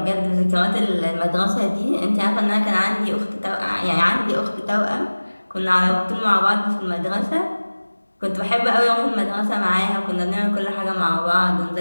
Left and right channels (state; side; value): inverted; both; correlation -1.00